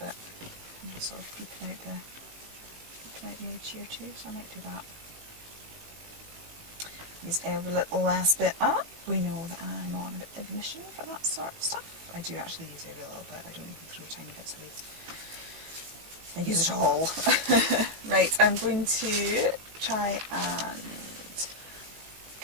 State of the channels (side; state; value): left; late; 18 ms